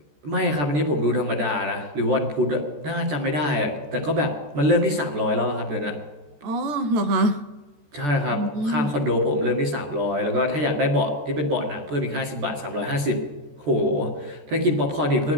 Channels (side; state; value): left; late; 14 ms